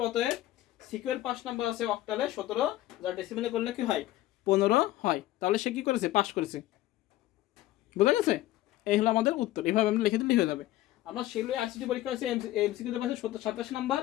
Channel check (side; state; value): right; quieter; 15.6 dB